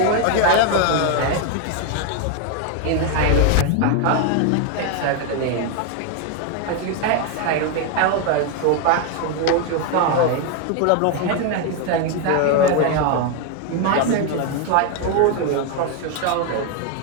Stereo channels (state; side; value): different; both; correlation 0.01